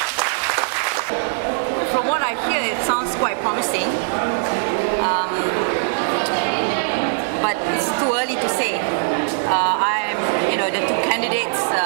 From what I hear, it sounds quite promising, but it's too early to say. The two candidates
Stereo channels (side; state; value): left; silent; digital silence